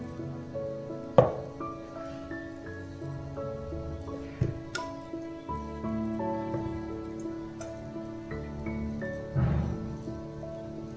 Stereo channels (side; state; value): both; identical; correlation 1.00